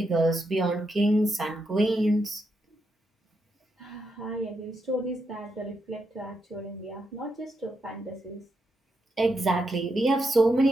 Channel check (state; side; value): normal; both; correlation 0.83